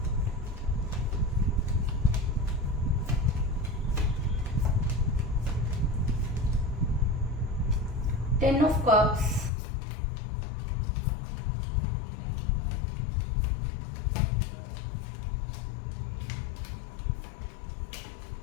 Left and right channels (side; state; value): right; drops out; at 9.5 s